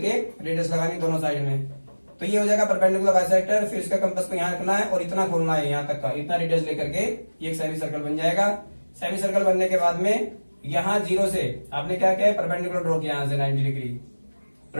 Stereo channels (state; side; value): inverted; both; correlation -1.00